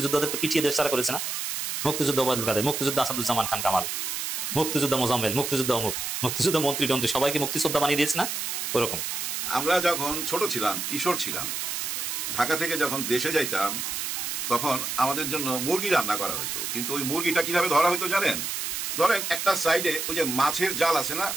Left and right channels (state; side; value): noise; right; hiss, 3 dB below the sound